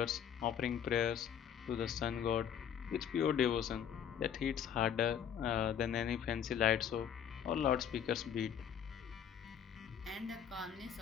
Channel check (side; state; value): right; quieter; 8.7 dB